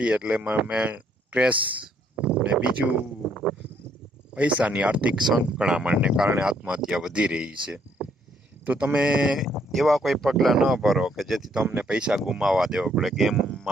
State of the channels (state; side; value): normal; both; correlation 0.69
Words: એટલે સ્ટ્રેસ ને બીજું પૈસાની આર્થિક સંકળામણને કારણે આત્મહત્યા વધી રહી છે. તો તમે એવા કોઈ પગલાં ન ભરો કે જેથી તમને પૈસા ગુમાવવા દેવો પડે.